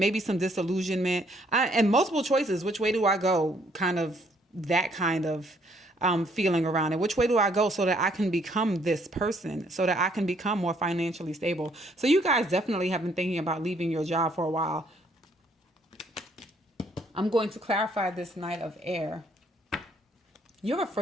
some disillusionment, and multiple choices. Which way do I go? Kind of that kind of feeling around it. Which way do I go so that I can become this person, so that I can become more financially stable? So you guys definitely have been thinking about leaving your job for a while. I'm going to clarify this Knight of Air. You're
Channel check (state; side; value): normal; both; correlation 0.66